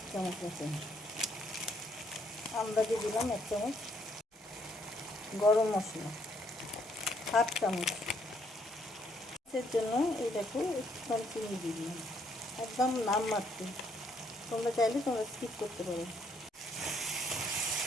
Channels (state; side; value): normal; both; correlation 0.69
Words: চামচ মতন, আন্দাজে দিলাম 1 চামচ, গরম মশলা 1/2 চামচ। এর জন্য এই দেখো একটুখানি চিনি দিয়ে দিলাম, একদম নাম মাত্র। তোমরা চাইলে তোমরা স্কিপ করতে পারো।